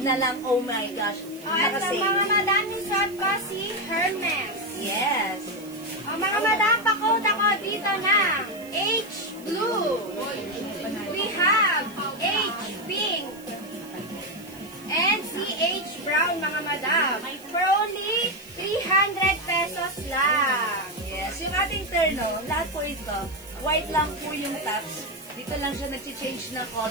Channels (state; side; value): noise; right; hiss, 21 dB below the sound